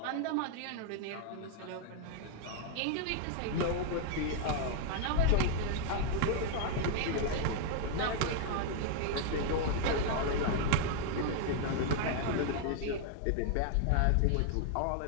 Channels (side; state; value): both; different; correlation 0.00